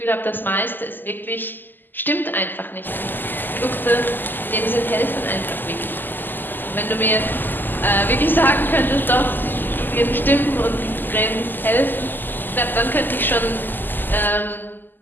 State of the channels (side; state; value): right; late; 0.090 ms